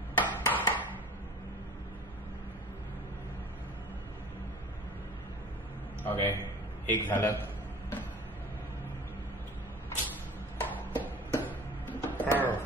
ओके, एक झालं.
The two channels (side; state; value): both; normal; correlation 0.41